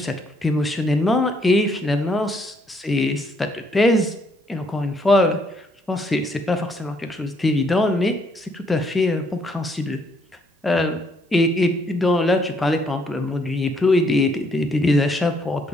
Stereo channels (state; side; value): normal; both; correlation 0.70